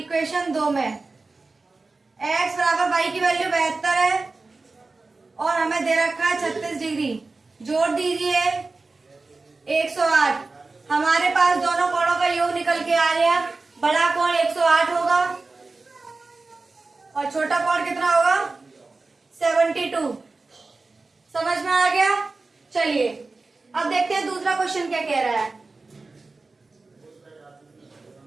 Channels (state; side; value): quieter; left; 3.6 dB